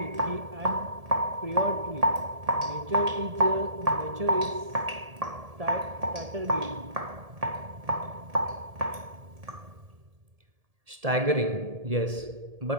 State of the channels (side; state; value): left; late; 1.7 ms